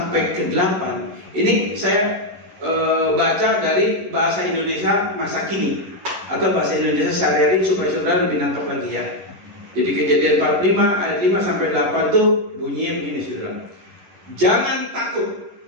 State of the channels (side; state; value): left; late; 11 ms